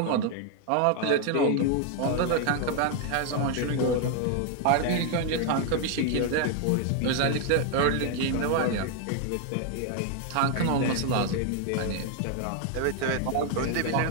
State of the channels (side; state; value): both; different; correlation 0.00